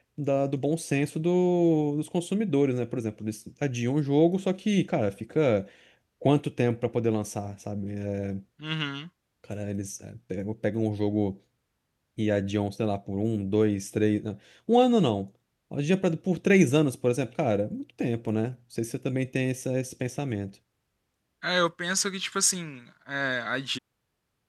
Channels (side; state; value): both; identical; correlation 1.00